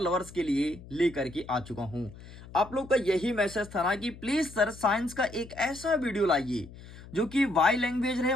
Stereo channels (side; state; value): left; noise; hum, 17 dB below the sound